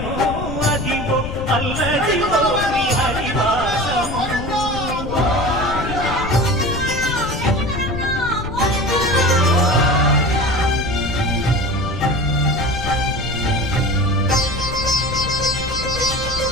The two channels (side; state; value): left; noise; rumble, 7 dB below the sound